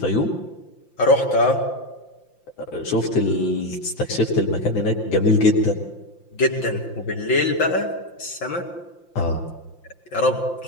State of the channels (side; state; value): right; late; 5.8 ms